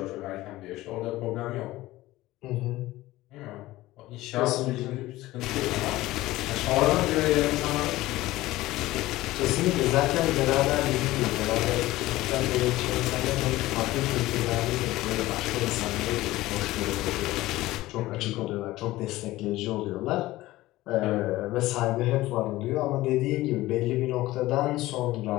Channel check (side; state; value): right; quieter; 17.5 dB